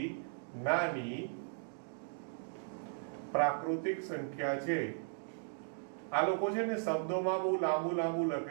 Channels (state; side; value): silent; left; digital silence